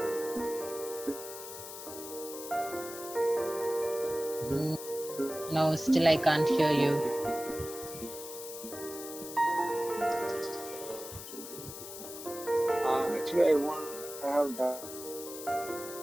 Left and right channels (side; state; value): left; noise; hiss, 11 dB below the sound